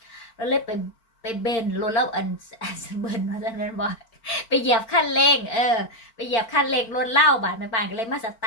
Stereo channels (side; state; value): right; late; 4.4 ms